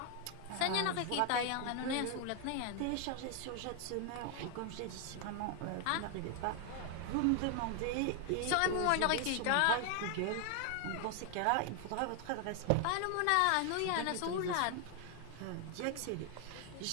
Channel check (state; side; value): different; both; correlation 0.00